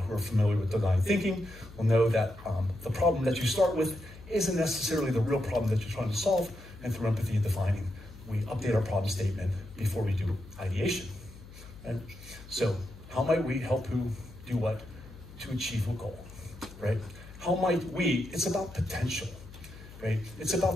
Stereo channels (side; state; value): left; noise; hum, 17 dB below the sound